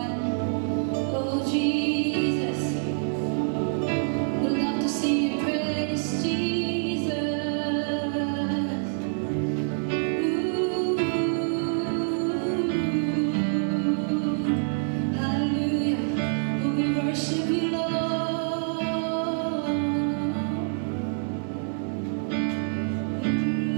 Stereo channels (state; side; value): silent; left; digital silence